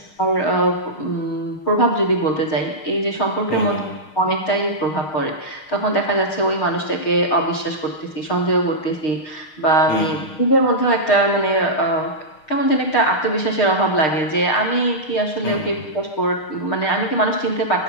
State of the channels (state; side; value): late; right; 6.5 ms